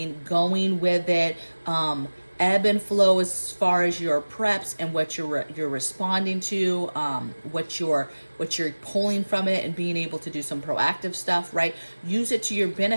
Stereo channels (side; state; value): both; inverted; correlation -1.00